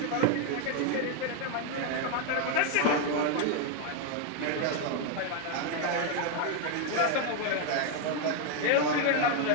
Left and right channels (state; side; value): different; both; correlation 0.01